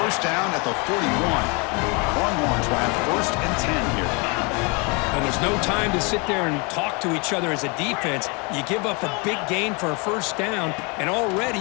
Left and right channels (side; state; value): right; quieter; 30.9 dB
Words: down at the 41. Longhorns will have first and 10 here. And there's no time to sit there and talk to each other as a defense. You give up a big gain for a first down, and already